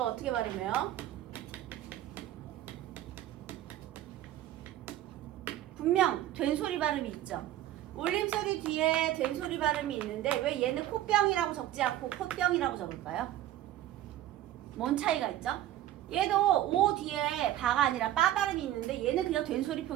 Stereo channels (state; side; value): quieter; left; 13.3 dB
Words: 어떻게 발음해요? 분명 된소리 발음이 있죠. 올림소리 뒤에 된소리 발음이 있는데 왜 얘는 코병이라고 적지 않고 콧병이라고 적을까요? 뭔 차이가 있죠? 얘도 오 뒤에 바가 아니라 빠 발음이 있는데 얘는 그냥 된소리